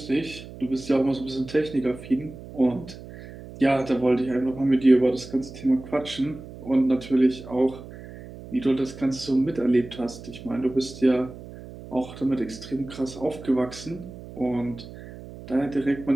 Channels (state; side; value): noise; right; hum, 15 dB below the sound